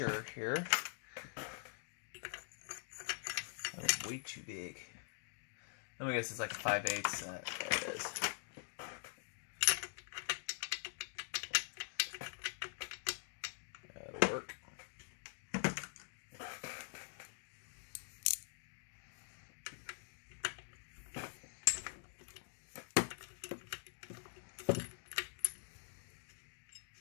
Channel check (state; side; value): silent; right; digital silence